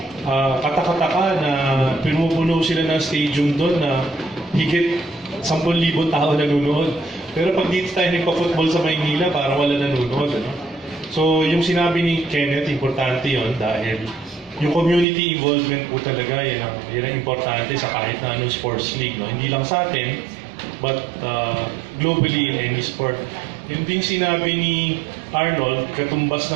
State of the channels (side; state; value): left; drops out; at 15.1 s